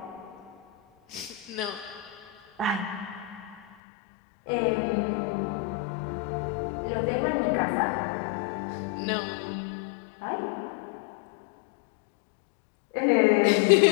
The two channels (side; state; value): right; drops out; at 3.6 s